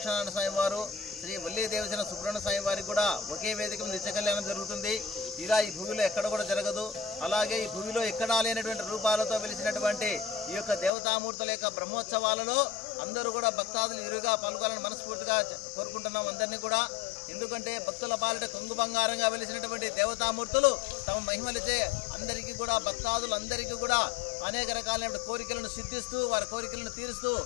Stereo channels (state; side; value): drops out; right; at 10.9 s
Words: స్వామి వారు, శ్రీ వల్లి దేవసేన సుబ్రహ్మణ్య స్వామి వారికి కూడా ఒకే వేదిక మీద నిత్య కళ్యాణం జరుగుతుంది. ఇలా ఈ భూమిలో ఎక్కడ కూడా జరగదు. అలాగే ఈ భూమిలో ఎక్కడా లేనటువంటి రూపాలతో వెలిసినటువంటి ఈ యొక్క దేవతామూర్తుల యొక్క బ్రహ్మోత్సవాలలో అందరూ కూడా భక్తాదులు ఇరుగా పాల్గొనాలని మనస్ఫూర్తిగా కోరుకుంటున్నాం అందరినీ కూడా. ఎందుకంటే భక్తుల పాలిట కొంగు బంగారంగా వెలిసినటువంటి దేవతామూర్తులు తమ మహిమలచే అందరికీ కూడా భక్తాదులందరికీ కూడా అనేక రకాలైన కోరికలను సిద్ధిస్తూ వారి కోరికలను తీరుస్తూ